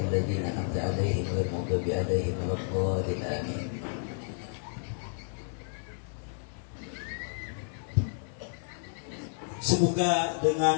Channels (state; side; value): silent; right; digital silence